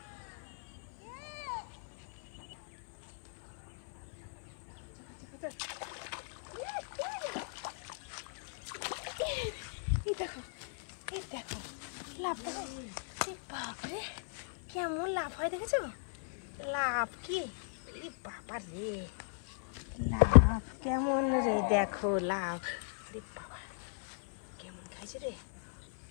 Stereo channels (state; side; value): silent; right; 54 dB below the other